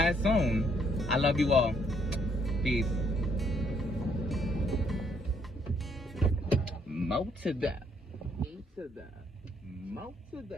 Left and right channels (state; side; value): normal; both; correlation 0.69